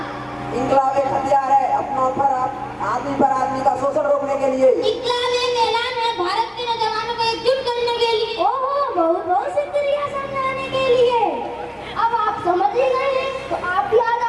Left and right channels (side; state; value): both; identical; correlation 1.00